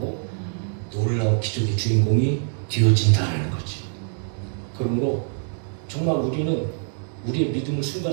놀라운 기적의 주인공이 되어진다는 거지. 그러므로 정말 우리는 우리의 믿음을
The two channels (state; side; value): silent; left; 62 dB below the other